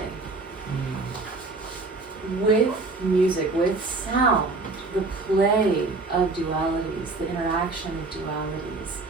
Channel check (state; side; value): quieter; left; 3.5 dB